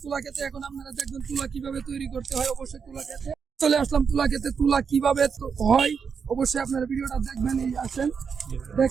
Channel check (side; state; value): left; quieter; 6.2 dB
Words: তুলা খেতে। এখন আপনারা দেখবেন তুলা কিভাবে তৈরি করতে হয়। অবশ্যই তুলা খেতে চলে আসলাম। তুলা খেতে তুলা কিভাবে হয় অবশ্যই আপনারা ভিডিওটা দেখবেন। এই আসেন,